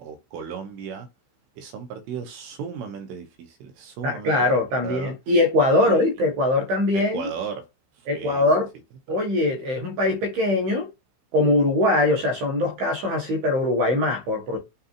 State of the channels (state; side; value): late; left; 15 ms